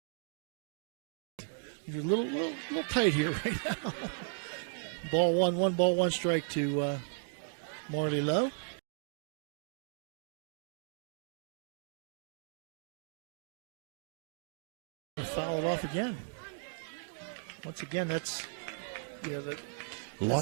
You're a little tight here right now. Ball 1 ball, 1 strike to Marley Lowe. Foul it off again. Once again, that's a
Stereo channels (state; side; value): silent; left; digital silence